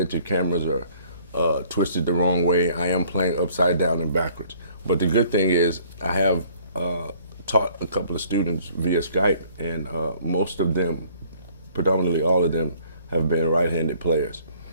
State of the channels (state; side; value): inverted; both; correlation -0.59